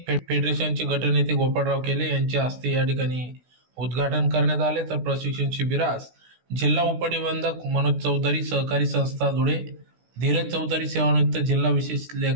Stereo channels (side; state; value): left; late; 16 ms